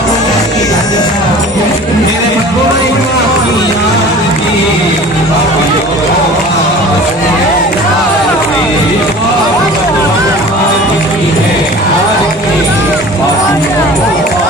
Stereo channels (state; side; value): normal; both; correlation 0.42